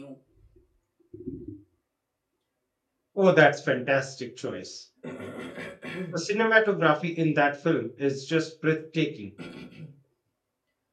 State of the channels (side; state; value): both; identical; correlation 1.00